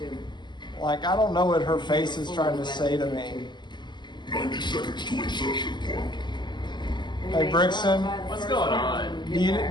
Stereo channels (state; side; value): late; right; 0.21 ms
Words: Like, I don't know what her face is trying to say to me. 90 seconds to insertion point. Hey Brixton, What's going on? do